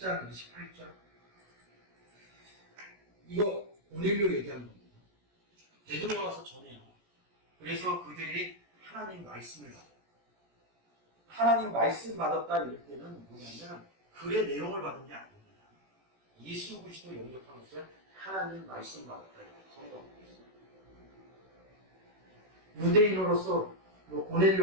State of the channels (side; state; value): left; late; 16 ms